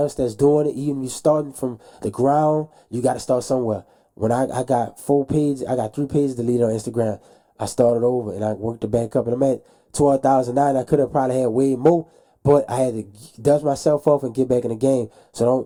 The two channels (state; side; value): identical; both; correlation 1.00